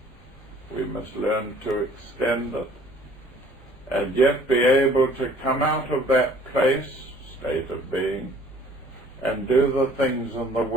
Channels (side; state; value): both; normal; correlation 0.55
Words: We must learn to extend it and yet be able to come out of that place, state of being, and do the things in the